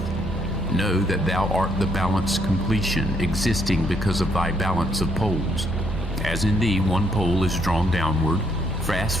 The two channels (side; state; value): both; normal; correlation 0.72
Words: Know that thou art the balanced completion, existing because of thy balance of poles. As in thee one pole is drawn downward, fast